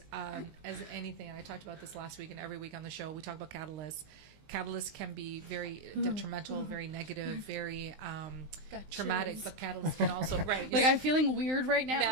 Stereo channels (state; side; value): late; left; 19 ms